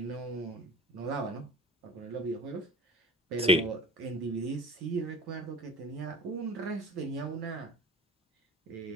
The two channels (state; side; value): normal; both; correlation 0.40